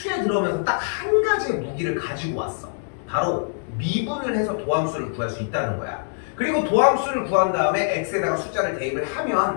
들어오면서 딱 한 가지의 무기를 가지고 왔어. 바로 미분을 해서 도함수를 구할 수 있다는 거야. 그리고 도함수를 구한 다음에 x에다가 숫자를 대입을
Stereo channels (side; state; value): right; silent; 63 dB below the other